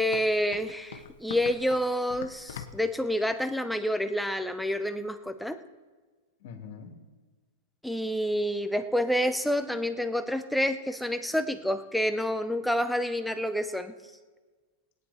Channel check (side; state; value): both; normal; correlation 0.85